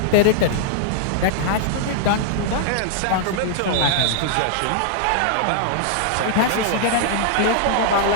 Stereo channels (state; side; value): different; both; correlation -0.01